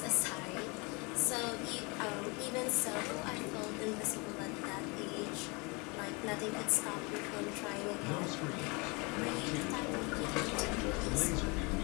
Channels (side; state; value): right; quieter; 29.0 dB